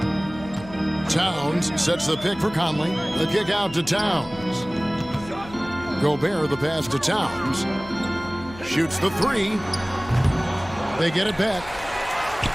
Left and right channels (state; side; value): noise; left; hum, 17 dB below the sound